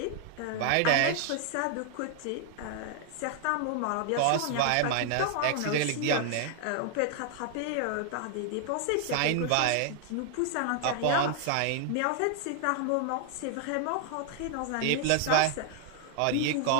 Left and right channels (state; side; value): different; both; correlation 0.00